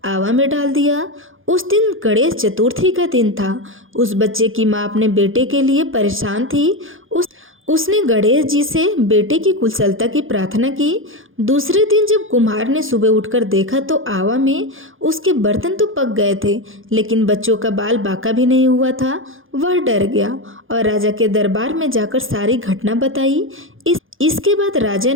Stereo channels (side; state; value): left; late; 0.59 ms